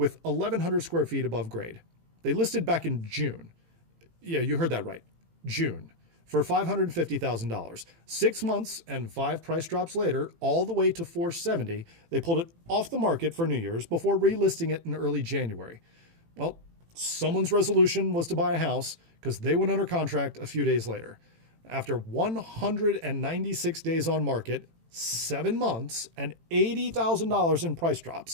1,100 square feet above grade. They listed back in June. Yeah, you heard that right. June. For $550,000. 6 months and 5 price drops later, all the way to $470,000, they pulled it off the market for New Year's before relisting it in early January. Well, someone's resolution was to buy a house because they went under contract a few days later. After 196 days on market, 7 months, and $80,000 in price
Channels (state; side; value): late; left; 18 ms